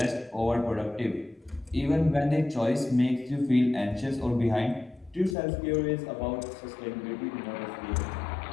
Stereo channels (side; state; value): right; drops out; at 5.4 s